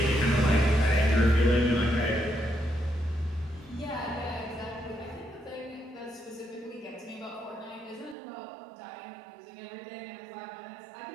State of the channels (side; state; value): left; drops out; at 8.2 s